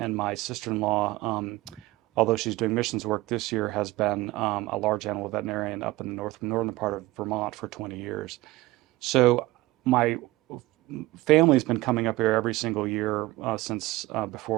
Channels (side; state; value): left; quieter; 19.0 dB